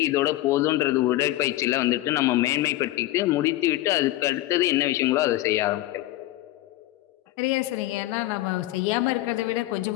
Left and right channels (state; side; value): quieter; right; 16.4 dB